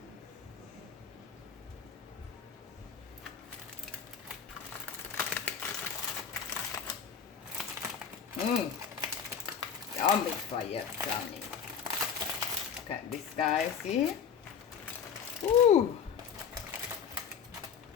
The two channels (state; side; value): quieter; right; 7.1 dB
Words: Yummy fire, Johnny. Look at this, guys, see? Ooh,